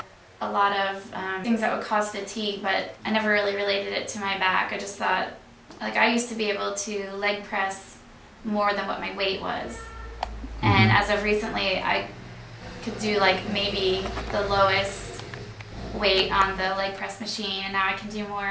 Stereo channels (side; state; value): both; identical; correlation 1.00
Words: lot of things that would cause fatigue, but I never really related it to my back. I just thought, like, I used to be able to leg press more than what my weight was. And as of recently, I could do like maybe the lowest weight on the leg press machine, and now I can do